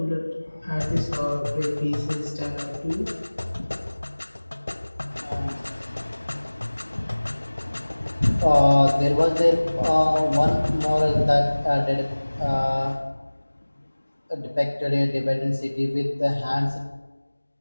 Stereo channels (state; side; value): inverted; both; correlation -1.00